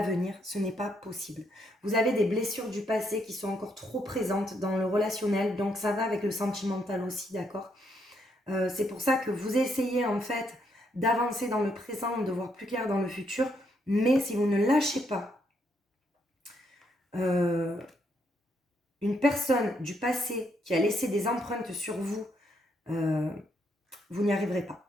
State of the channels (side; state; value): both; normal; correlation 0.75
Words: Ce n'est pas possible. Vous avez des blessures du passé qui sont encore trop présentes dans le relationnel, donc ça va avec le sentimental aussi, d'accord? C'est pour ça que vous essayez en fait d'avancer dans le présent, de voir plus clair dans le futur, mais si vous ne lâchez pas une personne du passé qui a laissé des empreintes sur vous, vous n'y arriverez pas.